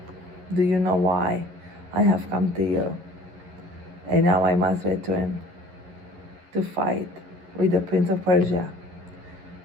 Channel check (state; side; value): late; left; 12 ms